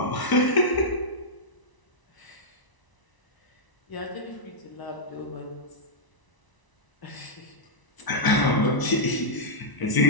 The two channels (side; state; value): right; late; 1.0 ms